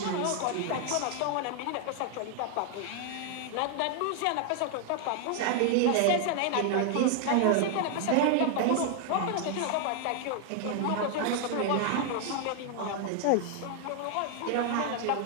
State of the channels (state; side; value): different; both; correlation 0.00